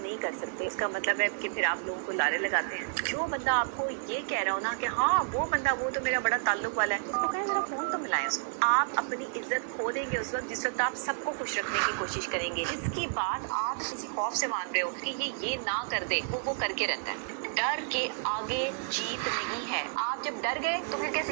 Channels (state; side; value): silent; left; digital silence